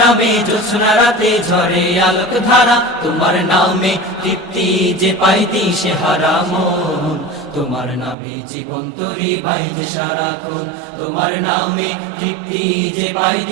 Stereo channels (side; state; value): left; drops out; at 8.2 s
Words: নামে জোছনা রাতে ঝরে আলোক ধারা। তোমার নামে তৃপ্তি যে পাই দিশে হারা মন, তোমার নামে জীবন তরি বাইজে সারাক্ষণ। তোমার নামে তৃপ্তি যে পাই